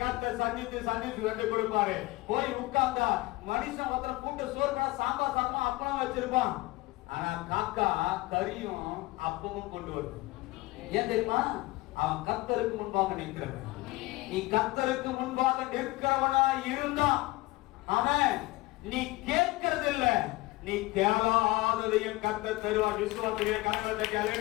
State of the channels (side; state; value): right; quieter; 20.6 dB